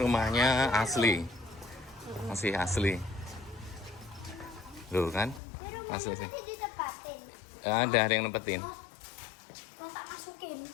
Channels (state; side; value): drops out; right; at 5.4 s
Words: asli, masih asli. Loh kan, asli sih. Ada yang nempetin. Kau tak masukin.